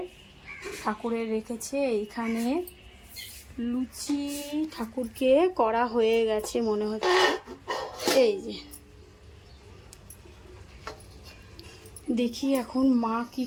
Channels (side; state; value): both; identical; correlation 1.00